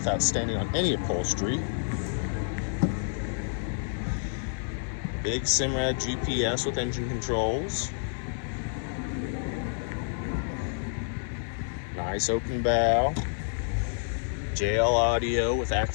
standing on any upholstery. Big Simrad GPS with engine controls. Nice open bow. JL audio with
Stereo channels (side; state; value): right; silent; 59 dB below the other